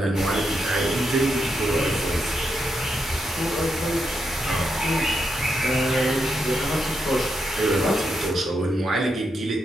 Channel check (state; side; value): normal; both; correlation 0.82